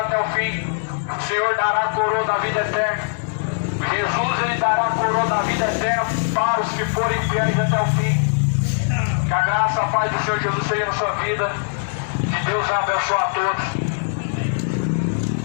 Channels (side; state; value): right; silent; digital silence